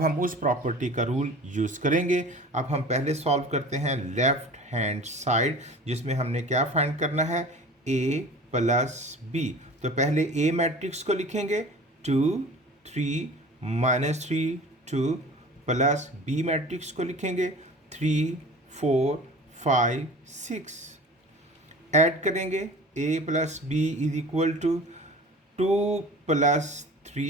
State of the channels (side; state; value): both; normal; correlation 0.40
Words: हम उस प्रॉपर्टी का रूल यूज़ करेंगे। अब हम पहले सॉल्व करते हैं लेफ्ट हैंड साइड, जिसमें हमने क्या फाइंड करना है, A plus B। तो पहले A मैट्रिक्स को लिखेंगे, 2 3 -3 2, प्लस B मैट्रिक्स को लिखेंगे, 3 4 5 6। ऐड करेंगे, A plus B is equal to 2 +